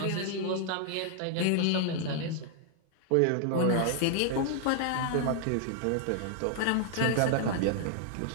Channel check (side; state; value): both; different; correlation 0.00